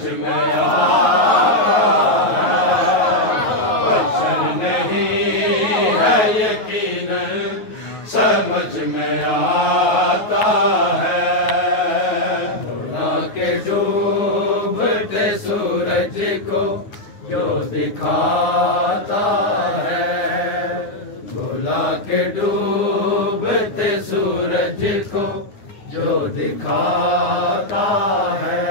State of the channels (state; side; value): late; right; 9.4 ms